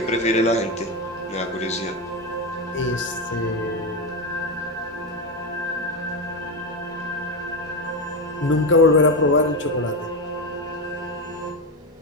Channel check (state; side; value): normal; both; correlation 0.13